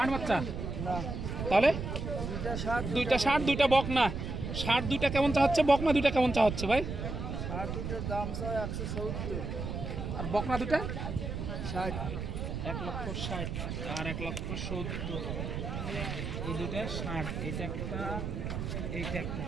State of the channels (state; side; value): noise; right; rumble, 4 dB below the sound